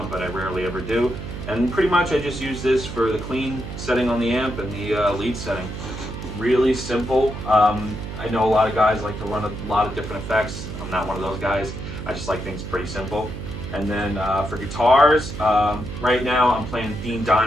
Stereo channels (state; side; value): noise; right; hum, 8 dB below the sound